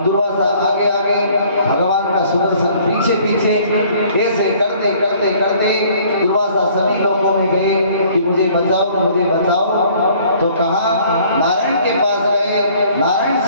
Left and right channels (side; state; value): both; inverted; correlation -0.57